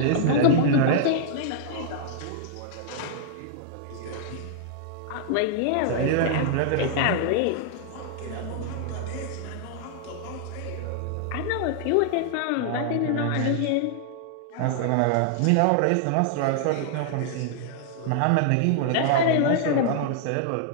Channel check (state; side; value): different; both; correlation -0.01